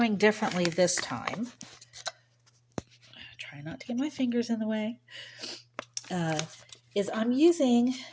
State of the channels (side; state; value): both; identical; correlation 1.00